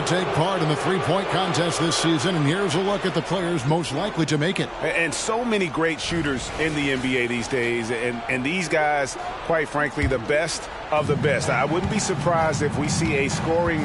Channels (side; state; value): both; identical; correlation 1.00